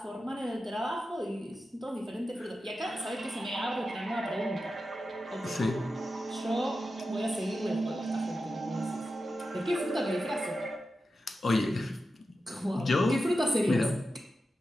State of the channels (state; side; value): normal; both; correlation 0.91